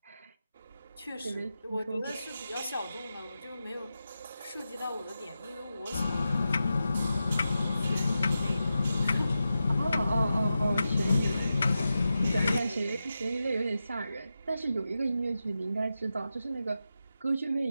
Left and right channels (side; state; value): both; inverted; correlation -0.90